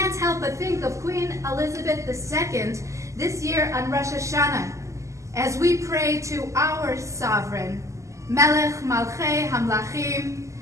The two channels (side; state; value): left; late; 0.15 ms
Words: help but think of Queen Elizabeth II this year on Rosh Hashanah as we pray to our sovereign, Melech Malchei Hamlachim,